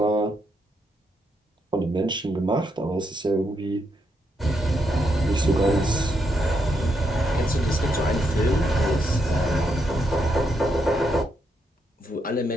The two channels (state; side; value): normal; both; correlation 0.79